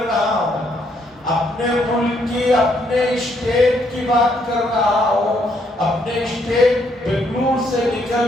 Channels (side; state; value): both; normal; correlation 0.72